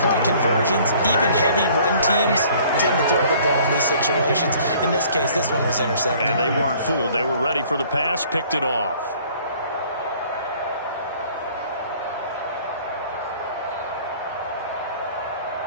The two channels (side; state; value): both; inverted; correlation -0.55